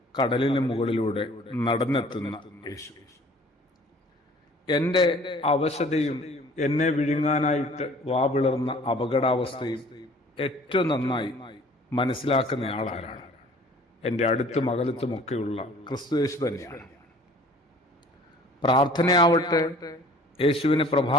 കടലിന് മുകളിലൂടെ നടന്നെത്തുന്ന യേശു. എന്റെ അവശതയും എന്നെ വിഴുങ്ങാനായിട്ട് വാവിളർന്ന അപകടാവസ്ഥയും ഏറ്റവും നന്നായി മനസ്സിലാക്കുന്ന ആളാരാണ്? എന്റെ അടുത്തും അകലത്തുമൊക്കെയുള്ള ക്രിസ്തു യേശു തന്നെയാണ്. പ്രാർത്ഥനയാവട്ടെ യേശുവിന്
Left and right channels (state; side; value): normal; both; correlation 0.51